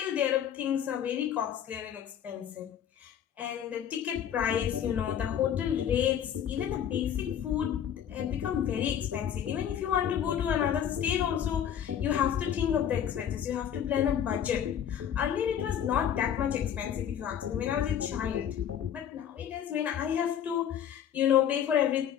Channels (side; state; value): right; quieter; 9.4 dB